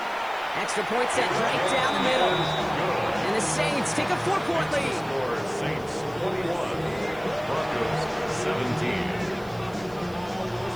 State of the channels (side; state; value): right; noise; hiss, 25 dB below the sound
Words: Extra point set right down the middle. And the Saints take a 4-point lead. Saints 21, Broncos 17.